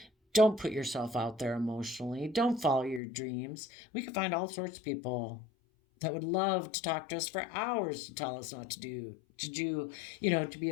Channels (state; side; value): drops out; right; at 3.0 s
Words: Don't put yourself out there emotionally. Don't follow your dreams. We can find all sorts of people that would love to talk to us for hours to tell us not to be